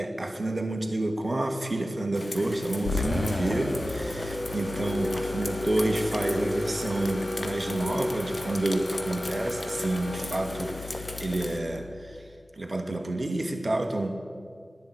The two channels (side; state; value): both; normal; correlation 0.95